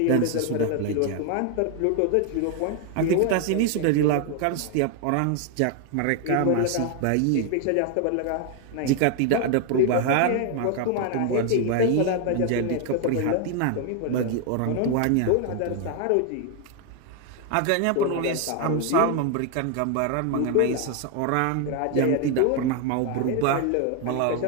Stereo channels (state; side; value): different; both; correlation 0.01